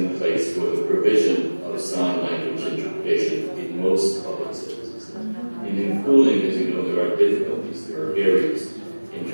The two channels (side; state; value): both; inverted; correlation -1.00